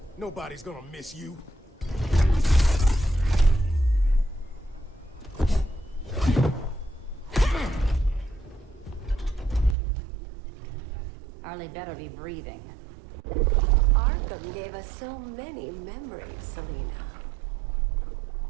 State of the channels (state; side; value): drops out; left; at 9.8 s